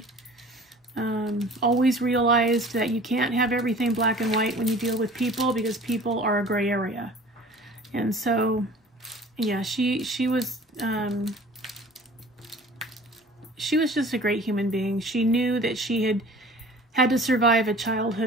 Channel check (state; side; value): normal; both; correlation 0.46